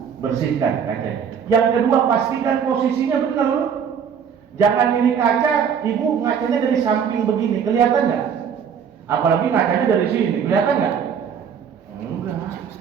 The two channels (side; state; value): left; quieter; 7.4 dB